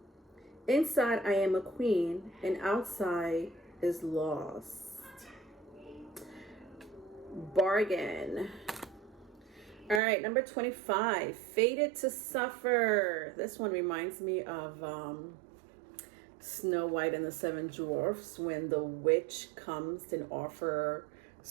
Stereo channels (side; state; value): left; drops out; at 10.0 s